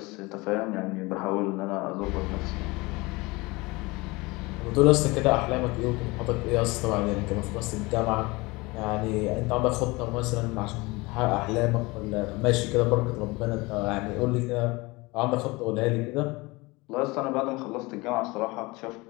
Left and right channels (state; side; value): quieter; right; 23.7 dB